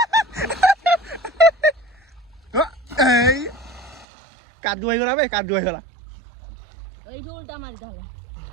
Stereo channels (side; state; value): left; drops out; at 4.0 s